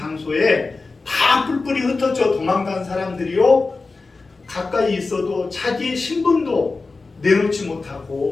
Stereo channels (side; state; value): right; quieter; 3.9 dB